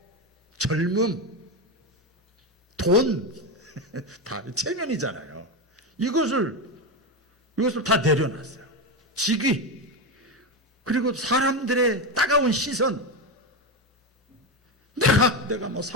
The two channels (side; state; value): both; normal; correlation 0.13